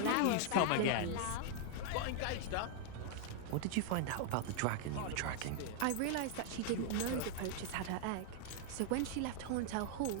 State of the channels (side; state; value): both; different; correlation 0.00